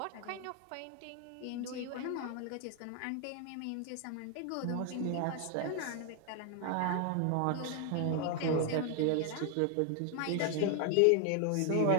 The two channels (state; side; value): different; both; correlation 0.00